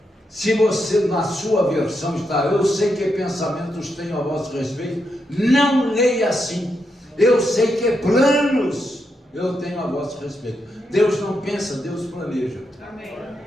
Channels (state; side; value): normal; both; correlation 0.83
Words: Se você, na sua versão, está: eu sei que pensamentos tenho a vosso respeito, não leia assim. Eu sei que planos eu tenho a vosso respeito. Deus não pensa, Deus planeja. Amém.